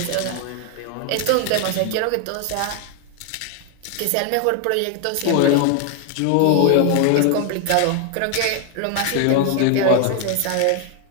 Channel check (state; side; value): different; both; correlation 0.00